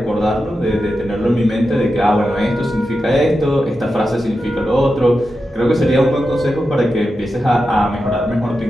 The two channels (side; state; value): both; normal; correlation 0.90